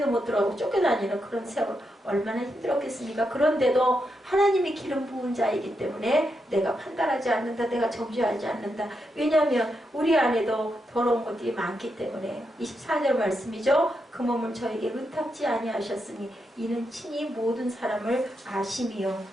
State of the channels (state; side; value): normal; both; correlation 0.83